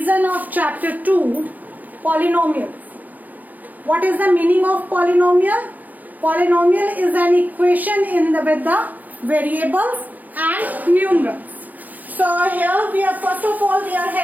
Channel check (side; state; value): left; late; 0.082 ms